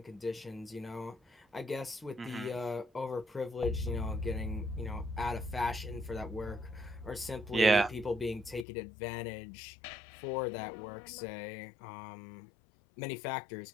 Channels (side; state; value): right; drops out; at 8.7 s